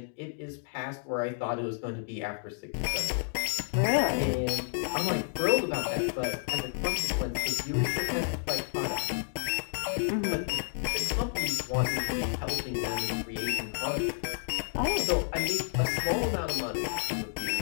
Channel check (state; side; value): silent; right; digital silence